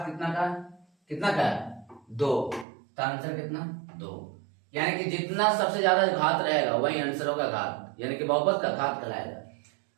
कितना का है 2, तो आंसर कितना 2। यानी कि जितना सबसे ज्यादा घात रहेगा वही आंसर होगा घात, यानी कि बहुपद का घात कहलाएगा।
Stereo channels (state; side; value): drops out; left; at 2.7 s